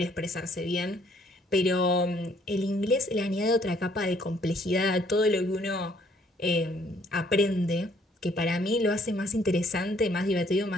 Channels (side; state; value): both; normal; correlation 0.64